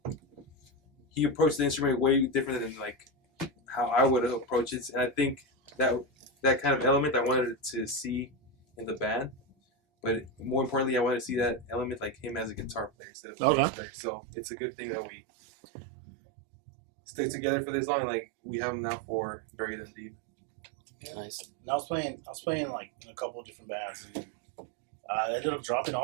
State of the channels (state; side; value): drops out; left; at 12.9 s